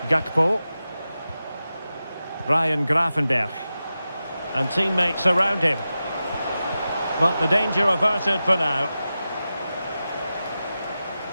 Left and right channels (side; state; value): both; inverted; correlation -0.93